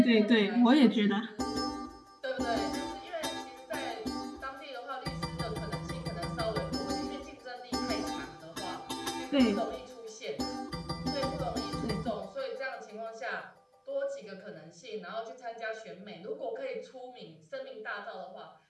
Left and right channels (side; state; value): both; identical; correlation 1.00